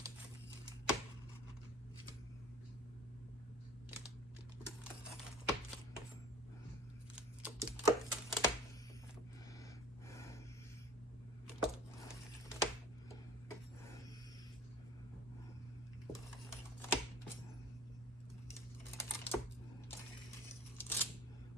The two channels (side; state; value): both; normal; correlation 0.46